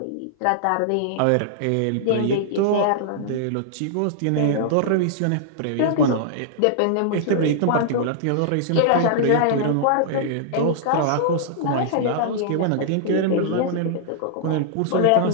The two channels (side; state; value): both; different; correlation -0.01